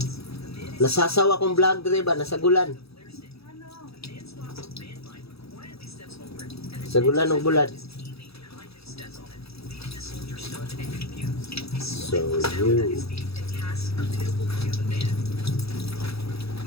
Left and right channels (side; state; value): right; late; 0.77 ms